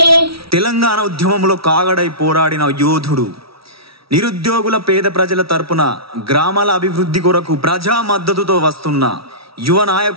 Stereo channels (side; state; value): left; late; 0.75 ms